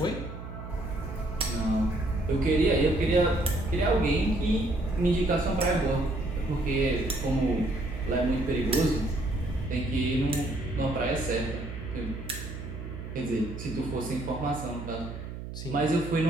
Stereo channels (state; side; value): noise; right; hum, 9 dB below the sound